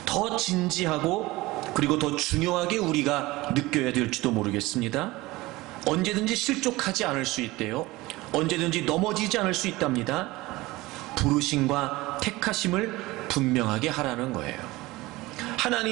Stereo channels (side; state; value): left; quieter; 20.0 dB